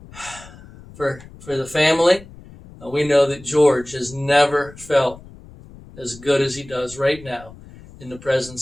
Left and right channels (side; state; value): left; noise; rumble, 20 dB below the sound